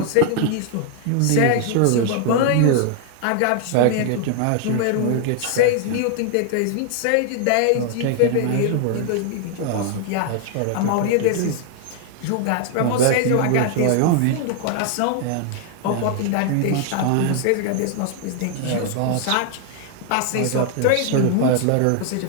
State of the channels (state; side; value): different; both; correlation 0.00